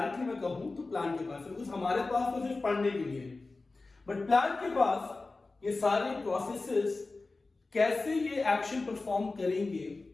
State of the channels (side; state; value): right; quieter; 3.5 dB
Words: मैं कहूं तो प्लांट के पास है, बिकॉज हमारे पास तो सिर्फ पढ़ने के लिए है, बट प्लांट के पास ये सारे प्रोसेसेस कैसे ये एक्शन परफॉर्म करेंगे